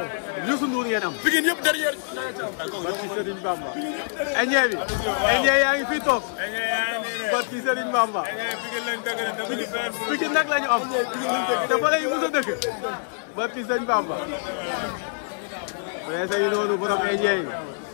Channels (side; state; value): right; silent; digital silence